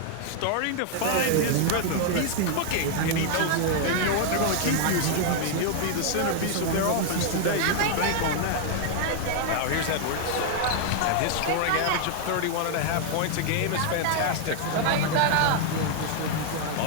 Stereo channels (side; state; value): both; different; correlation 0.00